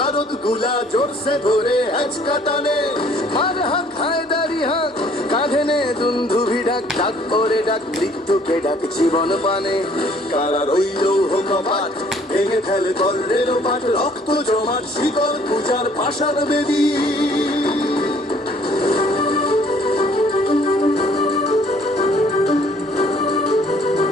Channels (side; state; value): both; normal; correlation 0.59